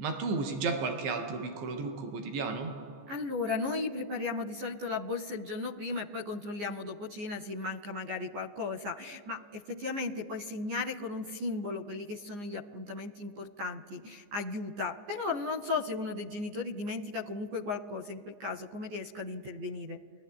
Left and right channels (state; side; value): late; left; 15 ms